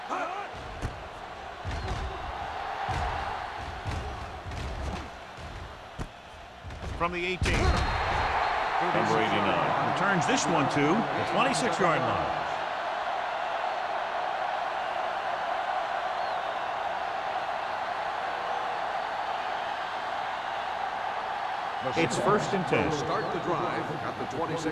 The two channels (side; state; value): both; identical; correlation 1.00